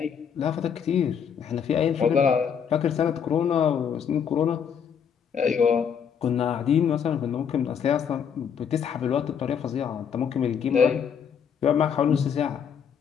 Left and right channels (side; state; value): right; quieter; 7.5 dB